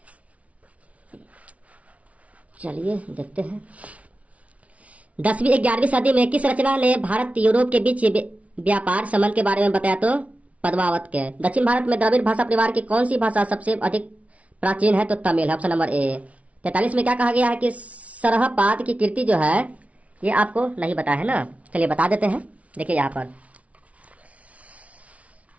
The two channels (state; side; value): late; left; 0.066 ms